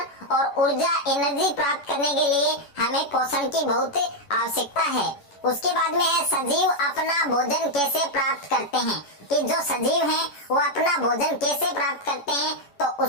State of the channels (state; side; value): late; right; 11 ms